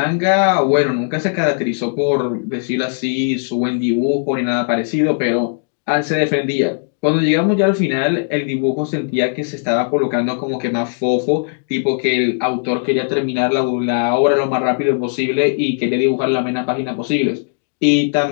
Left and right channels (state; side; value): silent; right; digital silence